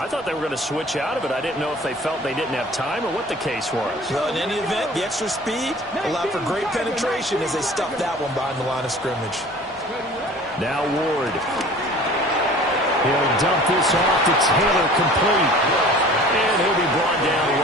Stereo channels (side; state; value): both; normal; correlation 0.46